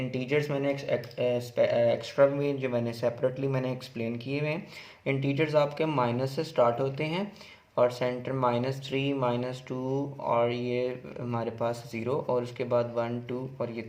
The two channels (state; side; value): identical; both; correlation 1.00